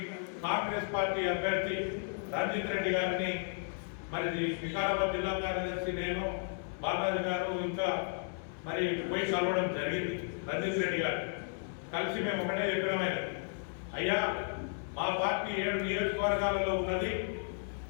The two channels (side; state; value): right; silent; 55 dB below the other